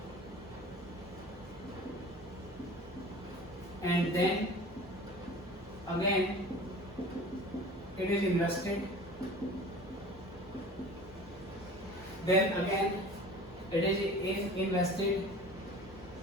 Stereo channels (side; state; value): both; normal; correlation 0.41